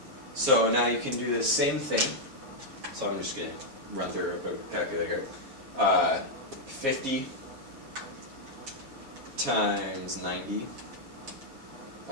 So now you can do the same thing. So I'm just going to run through a calculator here. 50 times 90,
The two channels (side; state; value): left; late; 7.4 ms